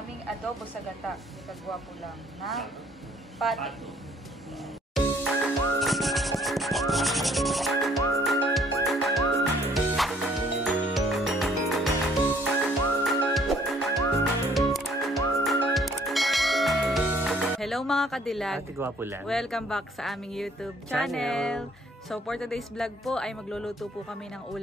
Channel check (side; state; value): both; normal; correlation 0.61